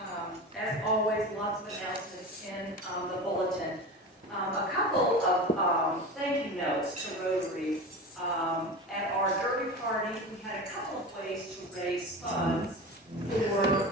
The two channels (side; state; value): both; normal; correlation 0.29